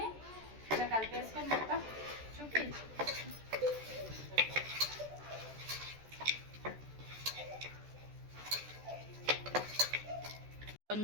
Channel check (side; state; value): left; late; 14 ms